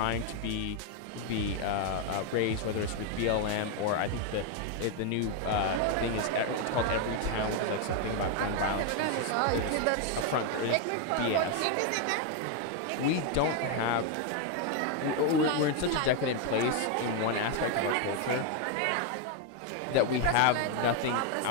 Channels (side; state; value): both; different; correlation 0.01